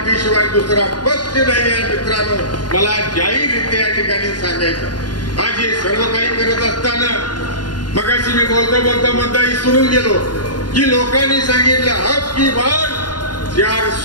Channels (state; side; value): late; right; 0.70 ms